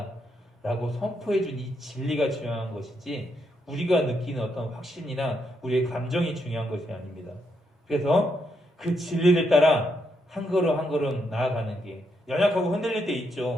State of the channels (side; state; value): both; normal; correlation 0.79